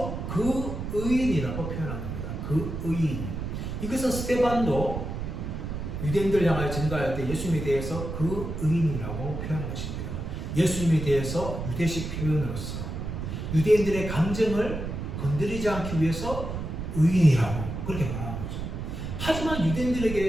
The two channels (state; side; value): noise; right; rumble, 5 dB below the sound